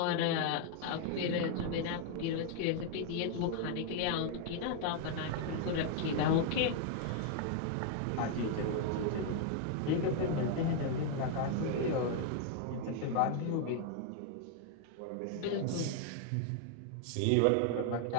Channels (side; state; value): both; different; correlation 0.00